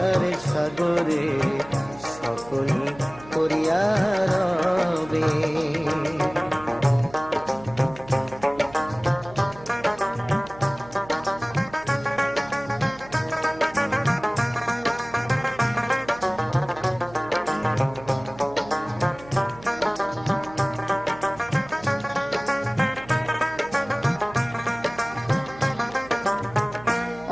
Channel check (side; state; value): right; noise; hum, 20 dB below the sound